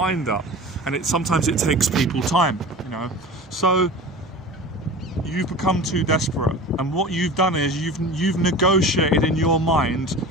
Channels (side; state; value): both; normal; correlation 0.35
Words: up, and sometimes it takes people time. You know, so you've become too desperate, and what you've done is you've negotiated in your mind,